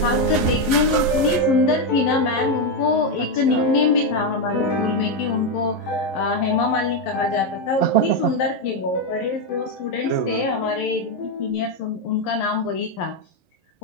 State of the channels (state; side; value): late; right; 11 ms